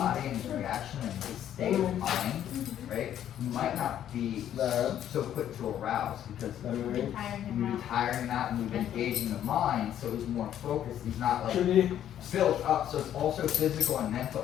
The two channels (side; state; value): right; quieter; 10.7 dB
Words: and his reaction and his state of mind, right? You might not be so quick to arouse because you're retiring that and you're engaging the mind, so he's more focused. He's not like built up. So it's also physical and